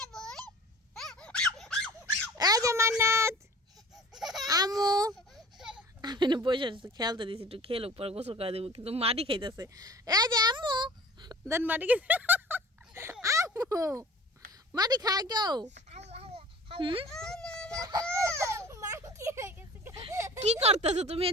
এই যে মান্নাত আমু আমি না বসে খেলতে দিছি একটু খেলুক পরে গোসল করে দেবো কিন্তু মাটি খাইতেছে এই যে আম্মু দেন মাটি খেতে আম্মু মাটি খায় কেউ কি করতেছো তুমি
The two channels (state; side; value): normal; both; correlation 0.44